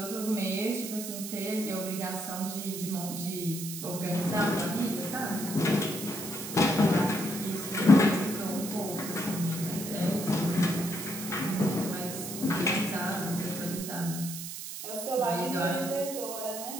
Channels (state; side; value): noise; right; hiss, 8 dB below the sound